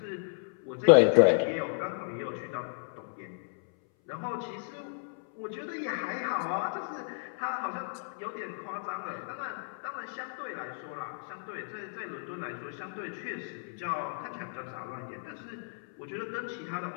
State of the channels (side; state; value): right; silent; 56 dB below the other